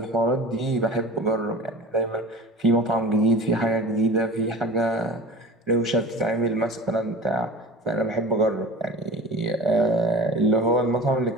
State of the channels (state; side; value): normal; both; correlation 0.36